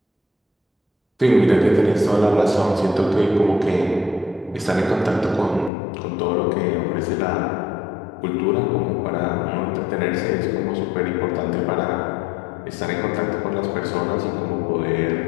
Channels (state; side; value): drops out; right; at 5.7 s